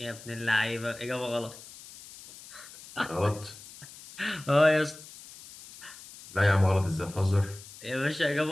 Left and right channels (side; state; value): left; noise; hiss, 18 dB below the sound